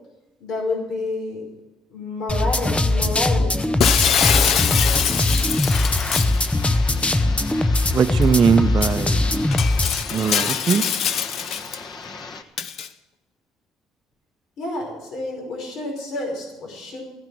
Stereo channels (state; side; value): normal; both; correlation 0.73